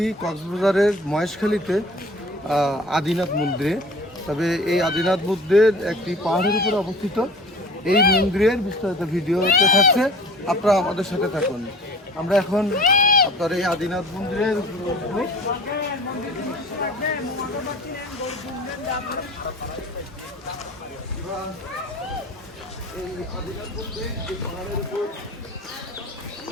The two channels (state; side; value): normal; both; correlation 0.44